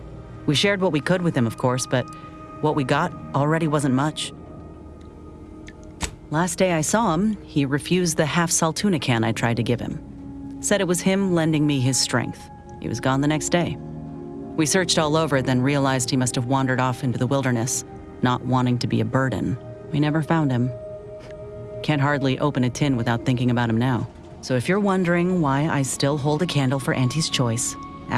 We shared what we could with him, of course, but what we got already wasn't much. Last day I saw him, he refused the half-salt tuna can I tried to give him. Said it was him lending me his strength. He was gone the next day. We searched all over, then realized he must have wandered off into the wilderness, not wanting to be a burden. We never found him. Can't hardly open a tin without thinking about him now. So if you're wondering why I still hold a candle for Auntie's Choice,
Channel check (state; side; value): identical; both; correlation 1.00